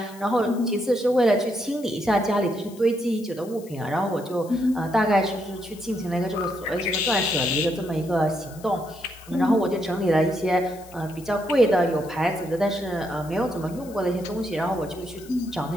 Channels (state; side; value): noise; left; hiss, 22 dB below the sound